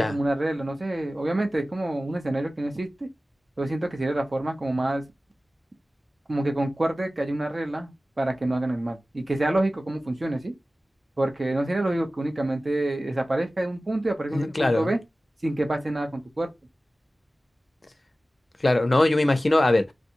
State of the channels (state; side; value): normal; both; correlation 0.96